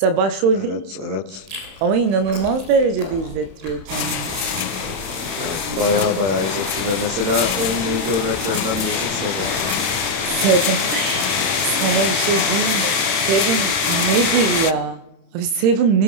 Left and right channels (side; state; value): left; late; 31 ms